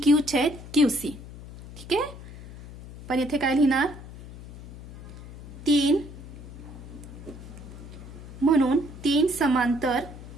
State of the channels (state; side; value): noise; left; hum, 14 dB below the sound